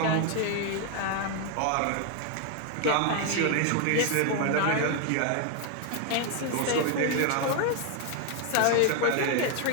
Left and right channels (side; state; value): both; different; correlation 0.01